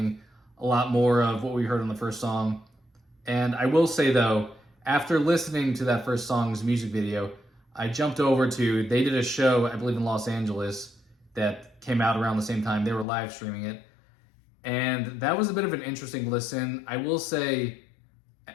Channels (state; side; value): drops out; right; at 13.1 s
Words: a lot more of what we heard on the first song. And I will say though, after listening to that first song's music video, I jumped over to, they did a show, I believe in Los Angeles, that came out around the same time. They were live streaming it. And that was a bit of an interesting listen. I will say,